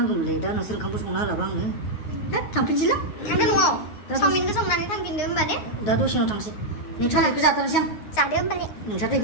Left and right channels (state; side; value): late; right; 9.6 ms